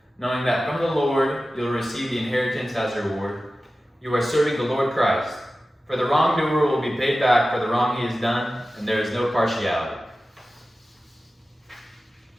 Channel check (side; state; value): both; normal; correlation 0.95